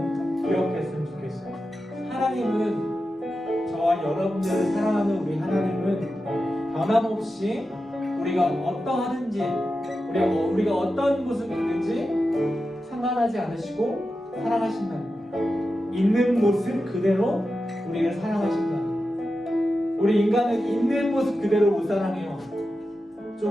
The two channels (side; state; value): both; normal; correlation 0.91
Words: 기억했으면 좋겠어요. 하나님은, 저와 여러분들을 사랑하는 우리 하나님은 변함없이 우리가 어떠하든지 우리가 어떤 모습이든지 상관하지 않으시고 사랑하신다는 거예요. 있는 모습 그대로 우리를 사랑하신다는 거예요. 우리 인간은 있는 모습 그대로 못 사랑해요.